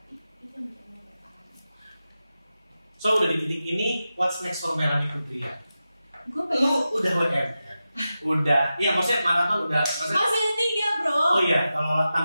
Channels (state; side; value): inverted; both; correlation -0.92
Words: Itu yang bikin lo bertahan. So udah di titik ini, what's next for Melanie Putria? Gue pengen. Lo udah WM kan? Udah. Iya maksudnya maraton udah. Maksudnya, masih ada 3 bro. Oh iya, kalau